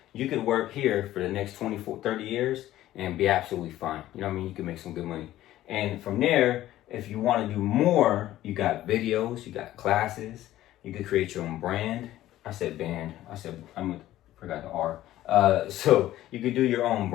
You could work here for the next 24, 30 years and be absolutely fine. You know what I mean? You can make some good money. And from there, if you want to do more, you got videos, you got classes, you could create your own brand. I said band. I forgot the R. So you could do your own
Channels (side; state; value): right; quieter; 14.3 dB